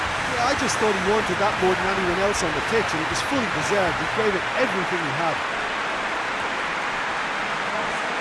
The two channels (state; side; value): identical; both; correlation 1.00